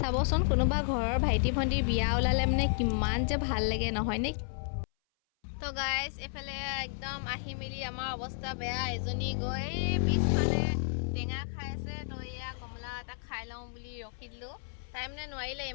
কোনোবা ঘৰৰ ভাইটি ভণ্টিৰ বিয়া ওলালে মানে কিমান যে ভাল লাগে নহয়নে? তো গাইজ, এইফালে একদম আহি মেলি আমাৰ অৱস্থা বেয়া। এজনী গৈ পিছফালে টেঙা খাই আছে, তো এয়া কমলা এটা খাই লওঁ বুলি ৰখি দিলোঁ। তাই মানে নোৱাৰিলে,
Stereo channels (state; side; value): silent; right; 56 dB below the other